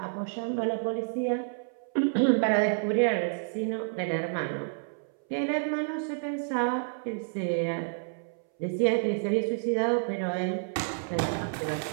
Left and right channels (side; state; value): left; silent; 58 dB below the other